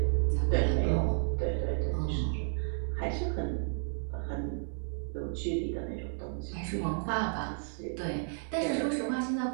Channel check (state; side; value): silent; left; 56 dB below the other